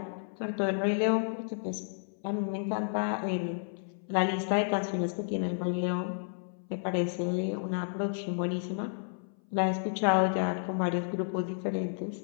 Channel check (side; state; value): right; silent; 57 dB below the other